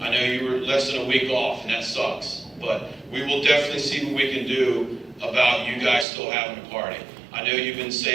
know you were less than a week off, and that sucks. But we will definitely see what we can do about you guys still having a party. I know you've been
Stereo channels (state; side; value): drops out; left; at 6.1 s